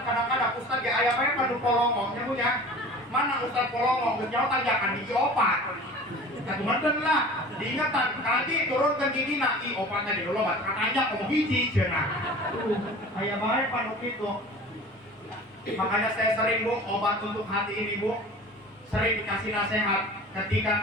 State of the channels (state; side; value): normal; both; correlation 0.40